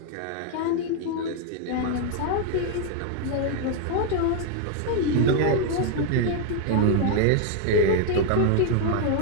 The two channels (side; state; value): both; different; correlation 0.00